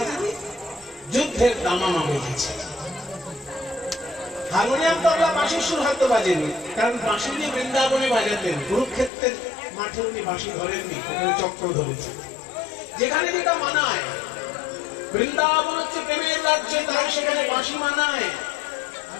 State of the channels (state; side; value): drops out; right; at 9.1 s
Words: যুদ্ধের দামামা বেজেছে। হারমোনিয়াম, তবলা, বাঁশির সুর হয়তো বাজেনি, কারণ বাঁশি নিয়ে বৃন্দাবনে বাজাতেন। কুরুক্ষেত্রের মাঠে উনি বাঁশি ধরেননি, ওখানে চক্র ধরেছেন। যেখানে যেটা মানায়, বৃন্দাবন হচ্ছে প্রেমের রাজ্য, তাই সেখানে বাঁশি মানায়।